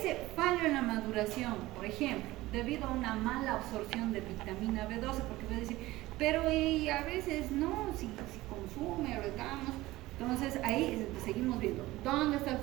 fallo en la maduración, por ejemplo, debido a una mala absorción de vitamina B12, porque voy a decir, pero y a veces no, si consume, retamos. Entonces ahí seguimos viendo, ¿dónde está el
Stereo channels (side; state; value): left; quieter; 18.1 dB